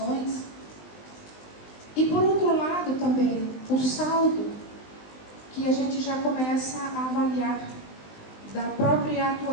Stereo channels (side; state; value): right; late; 19 ms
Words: E por outro lado também o saldo que a gente já começa a avaliar da própria